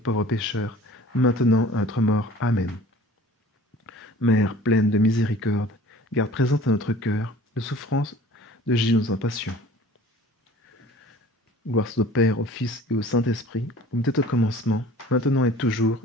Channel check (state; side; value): normal; both; correlation 0.47